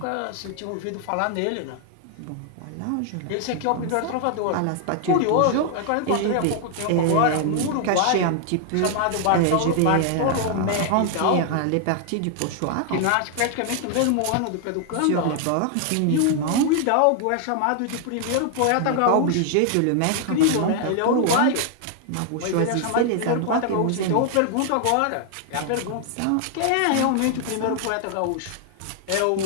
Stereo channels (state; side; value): different; both; correlation 0.00